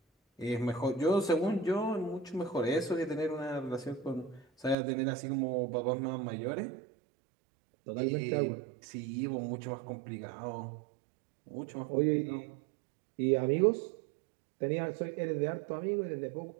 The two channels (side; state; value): left; drops out; at 4.8 s